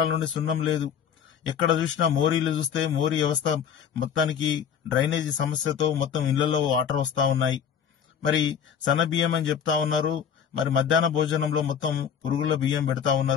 నుండి సున్నం లేదు. ఎక్కడ చూసినా మోరీలు చూస్తే మోరీ వ్యవస్థ మొత్తానికి డ్రైనేజీ సమస్యతో మొత్తం ఇళ్లలో వాటర్ వస్తా ఉన్నాయి. మరి సన్న బియ్యం అని చెప్తా ఉన్నారు, మరి మధ్యాహ్న భోజనంలో మొత్తం పురుగుల బియ్యం పెడతా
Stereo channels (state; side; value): quieter; right; 8.0 dB